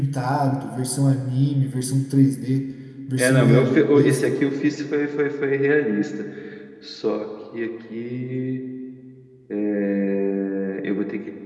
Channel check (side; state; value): both; identical; correlation 1.00